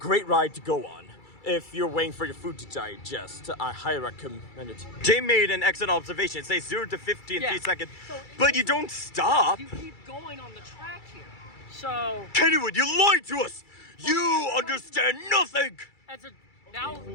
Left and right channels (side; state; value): right; late; 2.3 ms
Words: ride to go on. If you're waiting for your food to digest, I highly recommend it. Jay made an excellent observation. It says 0 to 50 in 3 seconds, but you don't stop. You keep going on the track here. So, Kennywood, you lied to us! You understand nothing! as a now